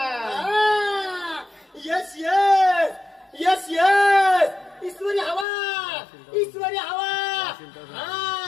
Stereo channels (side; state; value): right; drops out; at 5.5 s